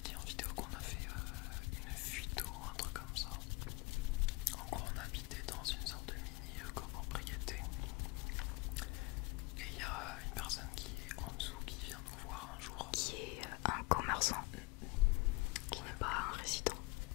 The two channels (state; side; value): quieter; right; 24.6 dB